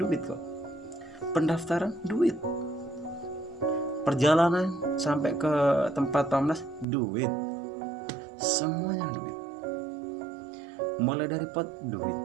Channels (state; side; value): drops out; left; at 6.9 s